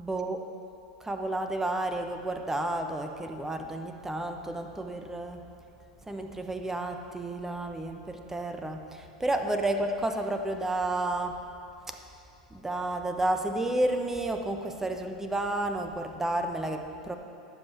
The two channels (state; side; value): normal; both; correlation 0.72